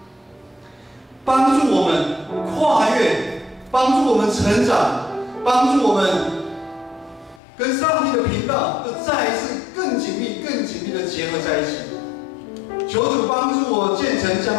帮助我们跨越，帮助我们成长，帮助我们跟上帝的频道又再一次更紧密的结合在一起。求主帮助我建成这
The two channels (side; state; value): right; drops out; at 7.4 s